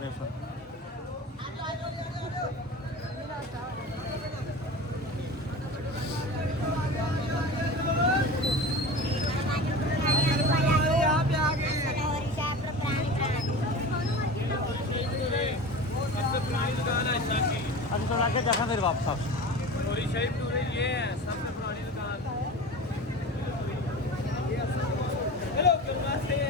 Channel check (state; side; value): normal; both; correlation 0.33